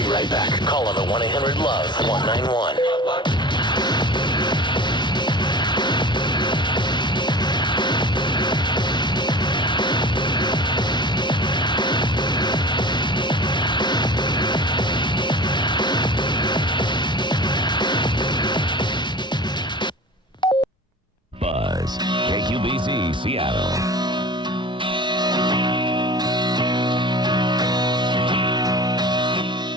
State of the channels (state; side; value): normal; both; correlation 0.38